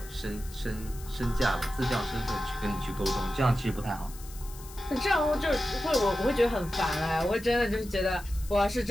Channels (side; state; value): left; noise; hiss, 18 dB below the sound